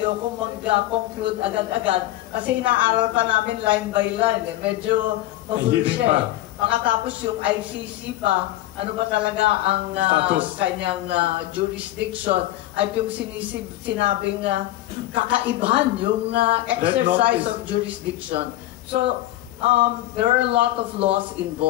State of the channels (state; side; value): quieter; right; 15.4 dB